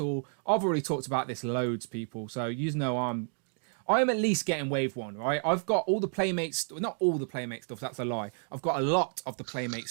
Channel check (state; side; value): silent; left; 57 dB below the other